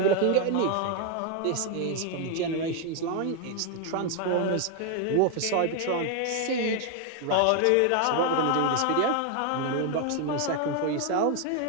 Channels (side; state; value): both; different; correlation 0.00